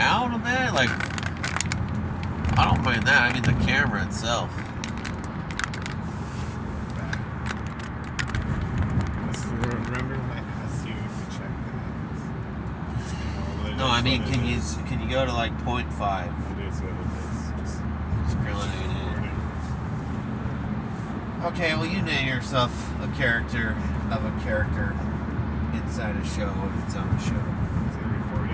on that? Like, I don't mind that. I mean the camera itself. Remember when I asked you to check that? No, I mean, can you go to like 0.5? It is what it is. Just grilling it in. Okay, well, you name yourself a character of a character inside a show of its own show. Is it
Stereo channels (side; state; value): both; identical; correlation 1.00